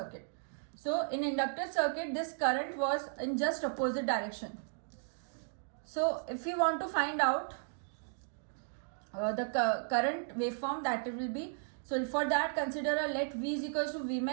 So in inductive circuit, this current was in just opposite direction. So if we want to find out the current waveform, that it will be, so for that consider a let V is equals to V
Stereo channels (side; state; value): left; silent; digital silence